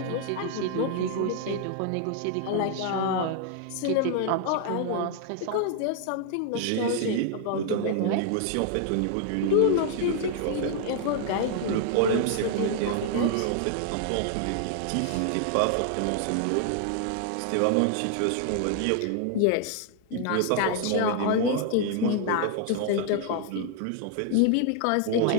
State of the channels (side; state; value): both; different; correlation 0.00